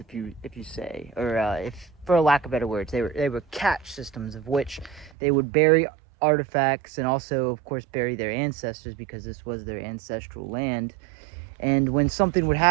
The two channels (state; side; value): drops out; left; at 5.1 s